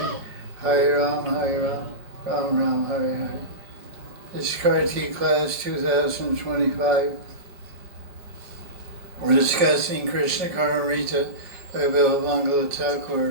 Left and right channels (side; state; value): left; late; 5.1 ms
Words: Hare Ram, Ram Ram, Hare Hare. This is Kartik class 2025. We're discussing Krishna Karnamrita by Bilamangala